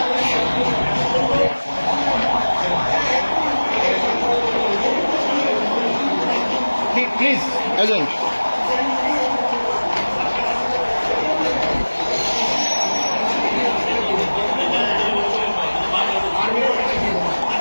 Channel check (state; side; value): inverted; both; correlation -1.00